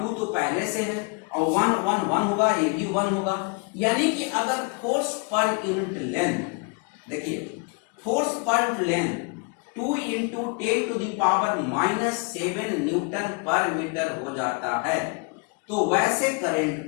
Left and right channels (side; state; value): right; quieter; 33.8 dB